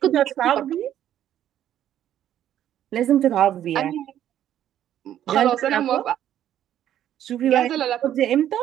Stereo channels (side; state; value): left; quieter; 11.2 dB